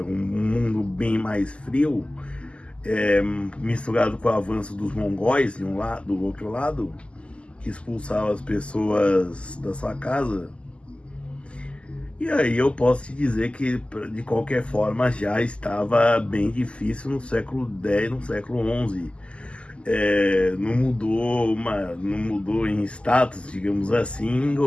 mundo bem mais frio, misturado com o avanço dos mongóis do outro lado, que expulsavam as pessoas da sua casa. E aí eu posso te dizer que, de qualquer forma, já estava bem difícil no século X, no século XI. Não mudou em status, digamos assim, em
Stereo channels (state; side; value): late; right; 0.054 ms